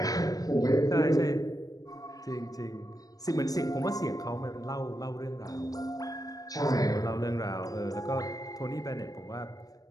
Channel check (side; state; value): right; late; 0.18 ms